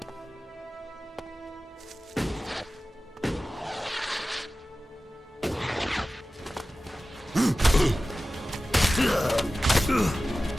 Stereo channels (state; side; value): normal; both; correlation 0.95